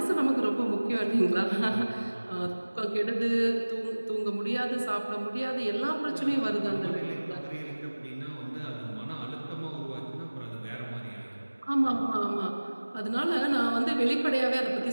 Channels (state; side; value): inverted; both; correlation -1.00